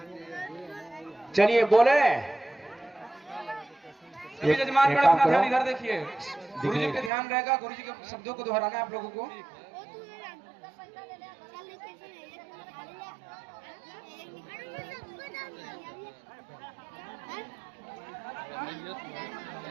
चलिए बोले सभी जजमान गण अपना ध्यान इधर देखिए, गुरु जी पे ध्यान रहेगा, गुरु जी के शब्दों को दोहराना है आप लोगों को।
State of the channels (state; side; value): drops out; left; at 7.1 s